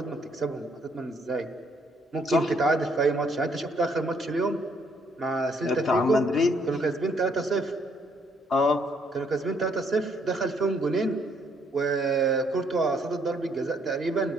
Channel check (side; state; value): both; normal; correlation 0.68